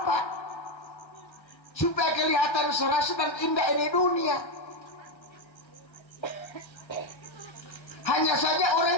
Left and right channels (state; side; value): late; right; 1.3 ms